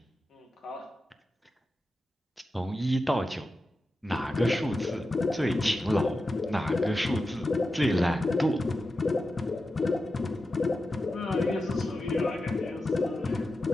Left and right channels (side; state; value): both; normal; correlation 0.91